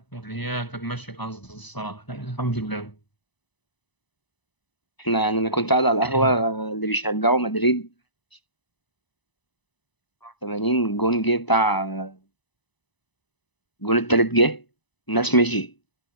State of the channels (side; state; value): right; late; 1.0 ms